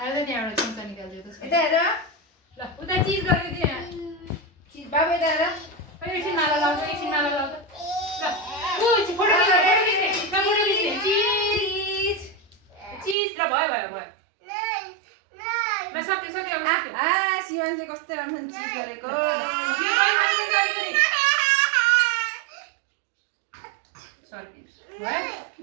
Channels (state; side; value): drops out; left; at 13.2 s